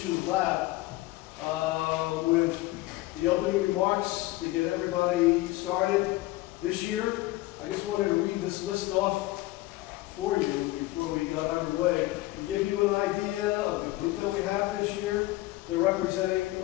Lab with the opening remarks to get everybody started this year. I just wanted to read this list off for you before we got underway to give you an idea of the group that we have this year. They're representing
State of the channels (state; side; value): quieter; right; 18.5 dB